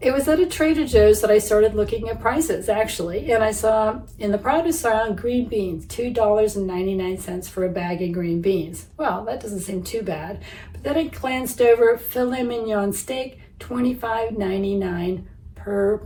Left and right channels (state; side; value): identical; both; correlation 1.00